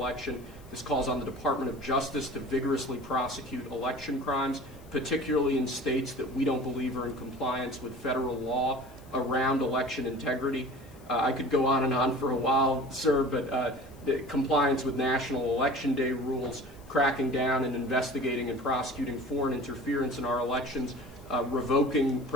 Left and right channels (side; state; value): left; noise; hiss, 27 dB below the sound